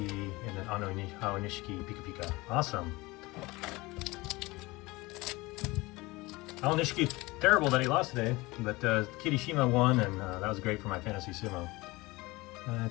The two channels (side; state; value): right; quieter; 22.1 dB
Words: and then Aonishiki, Pika Pika. Awesome. Aonishiki, terrible that he lost today, but Kirishima won, and that was great for my Fantasy Sumo.